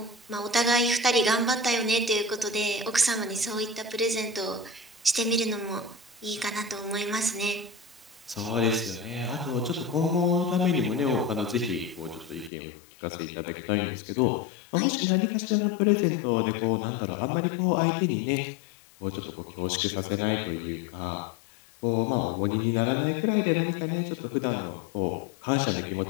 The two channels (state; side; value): drops out; right; at 12.5 s